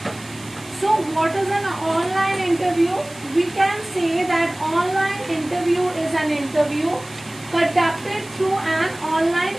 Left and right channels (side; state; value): right; noise; hiss, 20 dB below the sound